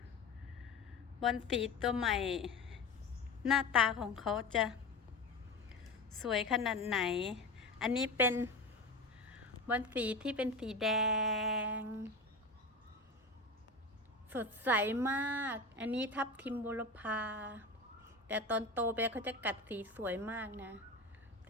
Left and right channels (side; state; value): right; quieter; 3.1 dB